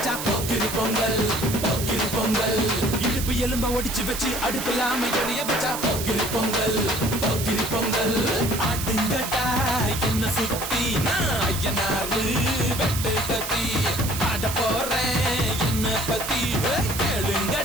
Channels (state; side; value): noise; right; hiss, 6 dB below the sound